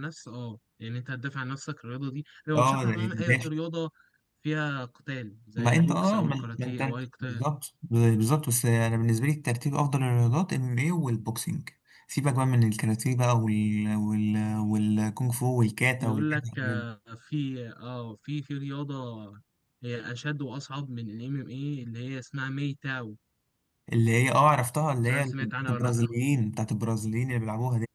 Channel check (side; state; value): both; identical; correlation 1.00